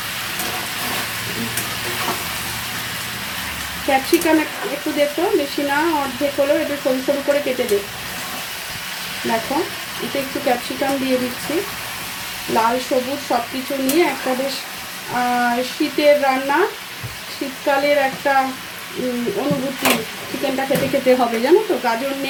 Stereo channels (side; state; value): both; identical; correlation 1.00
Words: ক্যাপসিকাম একটু দে তো, বেশি না, অর্ধেক হলেও একটু সরু সরু করে কেটে দে। দেখো এতে একটু ক্যাপসিকাম দিয়ে দিচ্ছি, লাল সবুজ সব কিছু নিয়ে একটা বেশ শীতের রান্না, শীতকালের একটা অনুভূতি চিকেনটা খেতে খেতে হবে, জানো তো। গাজর